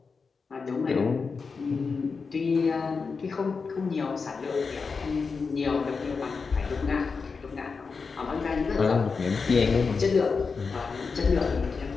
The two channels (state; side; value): quieter; right; 4.9 dB